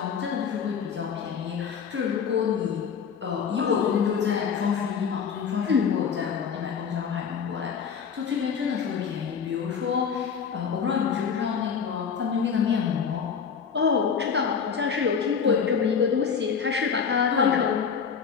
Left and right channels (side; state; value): right; quieter; 6.6 dB